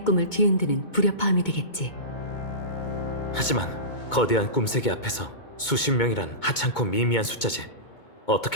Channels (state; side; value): late; right; 2.2 ms